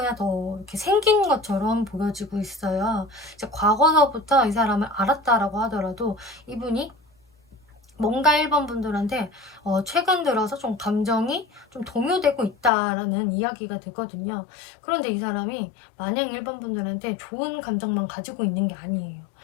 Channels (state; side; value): drops out; right; at 12.7 s